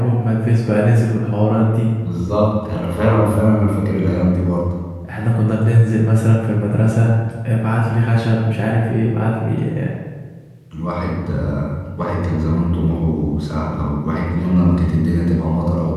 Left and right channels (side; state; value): both; identical; correlation 1.00